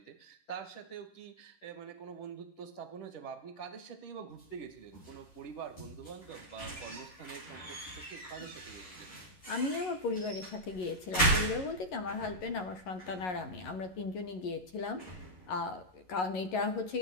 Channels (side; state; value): right; late; 11 ms